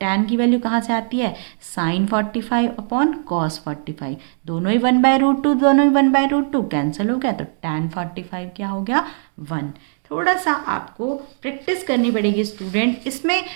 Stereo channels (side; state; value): left; silent; digital silence